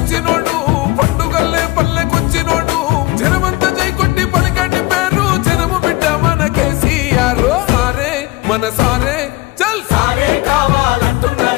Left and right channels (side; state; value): right; quieter; 20.6 dB